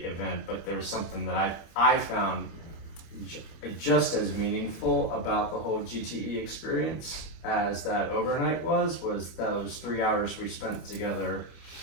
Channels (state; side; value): late; right; 25 ms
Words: event, but there was something that I found just as meaningful about the whole GTE experience as that overnight was those 3 hours we spent together